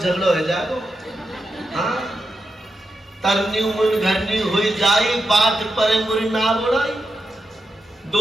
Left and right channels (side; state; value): both; normal; correlation 0.87